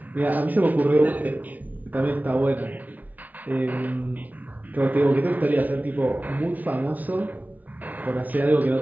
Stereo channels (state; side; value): late; left; 0.077 ms